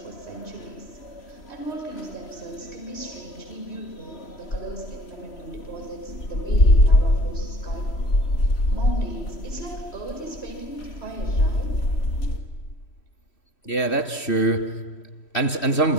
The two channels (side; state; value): right; late; 3.1 ms